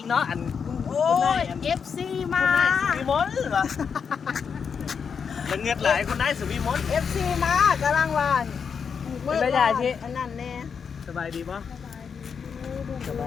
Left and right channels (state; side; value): quieter; right; 6.4 dB